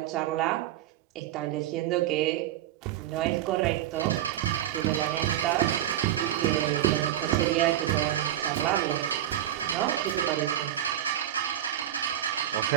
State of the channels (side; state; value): left; quieter; 12.1 dB